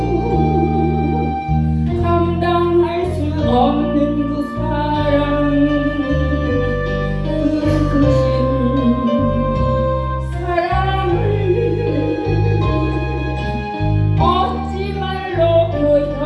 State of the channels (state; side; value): identical; both; correlation 1.00